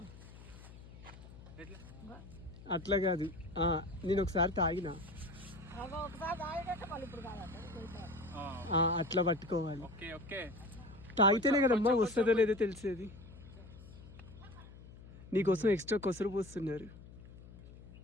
అట్లా కాదు. నేను ఒకసారి తాగినా, అట్లా పట్టుకోవాలి. ఓకే ఓకే, తాగితేనే కదమ్మా వస్తుందో లేదో తెలిసేది. నీకోసం ఎక్స్ట్రా కొసరు పోస్తున్నారు,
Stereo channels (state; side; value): noise; left; hum, 17 dB below the sound